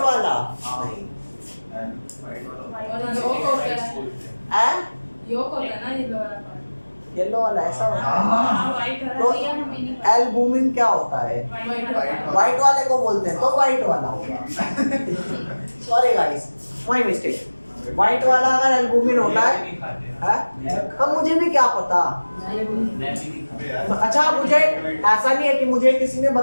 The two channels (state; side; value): inverted; both; correlation -1.00